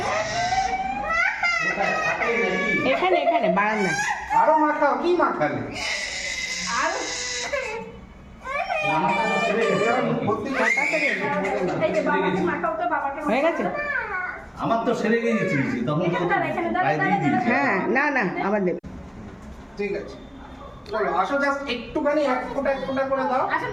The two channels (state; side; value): identical; both; correlation 1.00